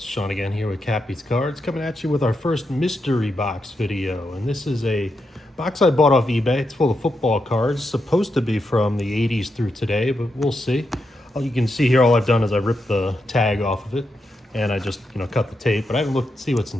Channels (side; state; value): both; normal; correlation 0.85